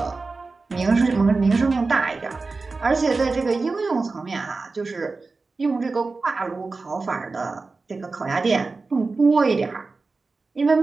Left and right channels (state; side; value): quieter; left; 3.9 dB